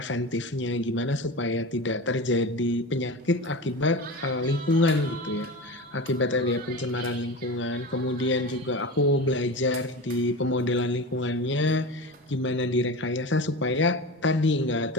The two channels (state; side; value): normal; both; correlation 0.27